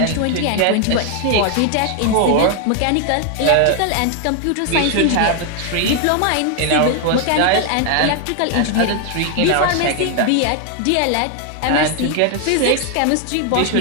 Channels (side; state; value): both; different; correlation 0.00